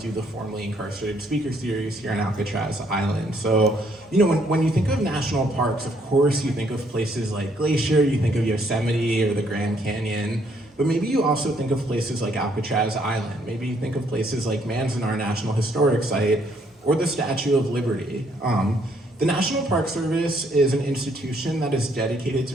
the Formerly Incarcerated Speaker Series here on Alcatraz Island. So, when you think of national parks, of course you think of places like Glacier, you think of Yosemite or the Grand Canyon, but maybe you also think of places like Alcatraz Island. Maybe you think of places like Manzanar National Historic Site or the Statue of Liberty. The National Park Service is an institution that is dedicated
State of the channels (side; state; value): both; normal; correlation 0.68